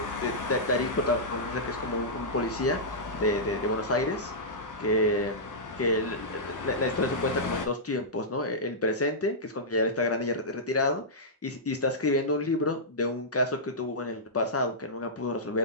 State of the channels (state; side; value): normal; both; correlation -0.13